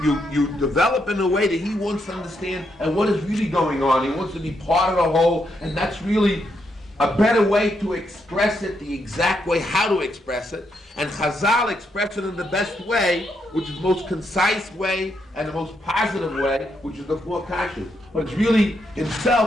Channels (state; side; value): normal; both; correlation 0.79